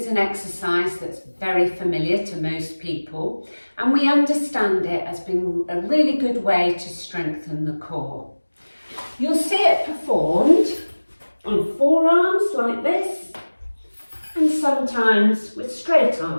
an exercise that's very familiar to most people, and we understand it as being a really good way to strengthen the core. You'll see it performed on forearms like this, and sometimes with straight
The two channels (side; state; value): both; inverted; correlation -1.00